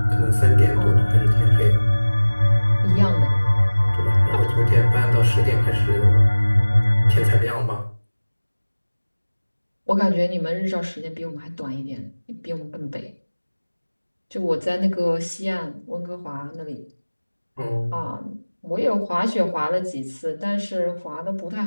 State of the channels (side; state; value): both; inverted; correlation -1.00